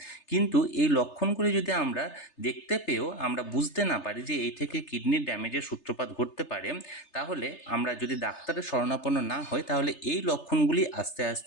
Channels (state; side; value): late; right; 3.3 ms